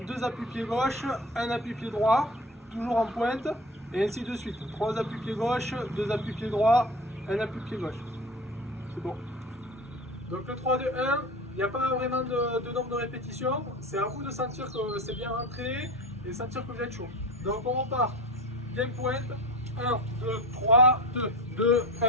2 appuis pied gauche, 1 appui pied droit, toujours en pointe et ainsi de suite. 3 appuis pied gauche, 2 appuis pied droit, 1 appui pied gauche. C'est bon. Donc le 3-2-1, il n'y a pas vraiment de nombre de répétitions, c'est à vous de sentir que c'est bien rentré et sentir que vous êtes chaud. Donc on repart, bien pointe, 1, 2, 3, 2, 2,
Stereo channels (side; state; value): both; normal; correlation 0.32